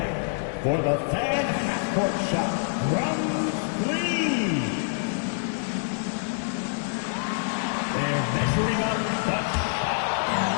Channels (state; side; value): silent; right; digital silence